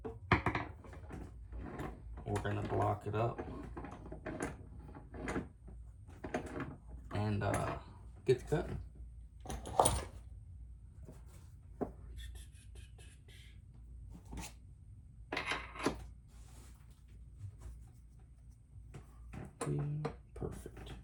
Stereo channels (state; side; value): identical; both; correlation 1.00